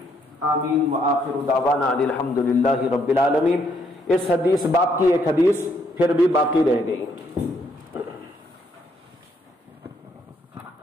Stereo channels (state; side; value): normal; both; correlation 0.72